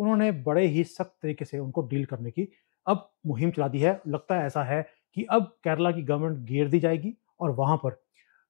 बड़े ही सख्त तरीके से उनको डील करने की अब मुहिम चला दी है। लगता है ऐसा है कि अब केरला की गवर्नमेंट घेर दी जाएगी और वहाँ पर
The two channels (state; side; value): silent; right; digital silence